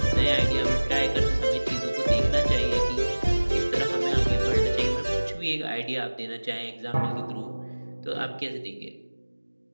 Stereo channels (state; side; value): inverted; both; correlation -1.00